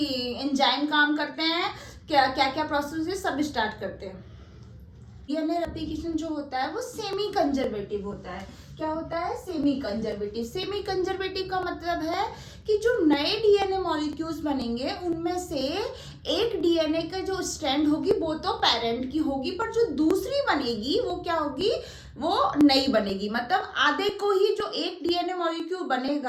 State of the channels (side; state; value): both; identical; correlation 1.00